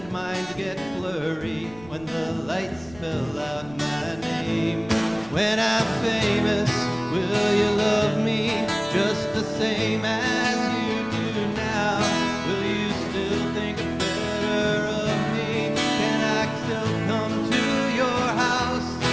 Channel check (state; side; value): noise; left; rumble, 21 dB below the sound